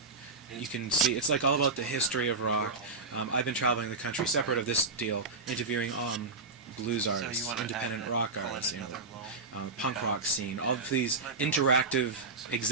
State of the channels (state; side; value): quieter; left; 3.7 dB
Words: you can see, it's like all about the history of rock. I've been traveling the country, separate of this deal, interviewing blues artists, independent rock artists, punk rock scene, all of these interactive